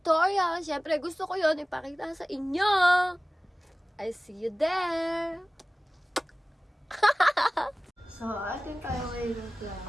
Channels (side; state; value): both; normal; correlation 0.98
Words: Siyempre, gusto ko yon ipakita sa inyo. I see you there. So, atin tayo ngayon ng